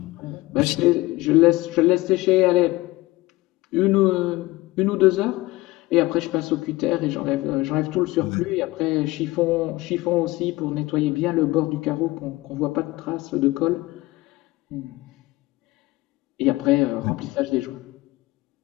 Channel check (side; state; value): right; quieter; 20.0 dB